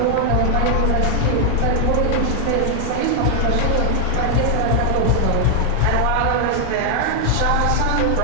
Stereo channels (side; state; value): both; different; correlation 0.00